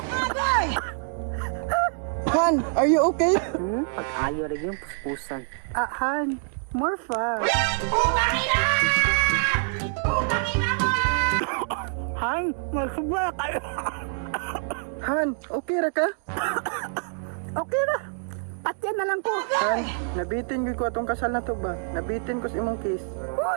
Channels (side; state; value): left; silent; 61 dB below the other